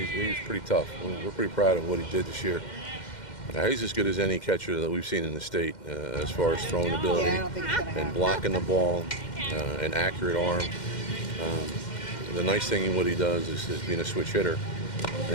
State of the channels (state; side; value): late; right; 2.1 ms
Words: was pretty tough. We're pretty proud of what he did this year. He's as good as any catcher that we've seen in the state as far as throwing ability and blocking the ball, an accurate arm. The nice thing in what he does is being a switch hitter.